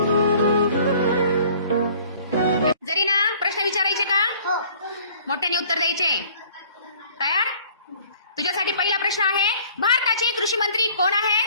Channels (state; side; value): inverted; both; correlation -0.53